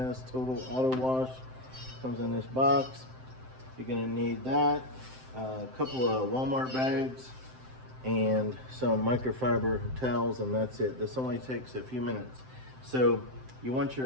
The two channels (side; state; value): left; late; 7.7 ms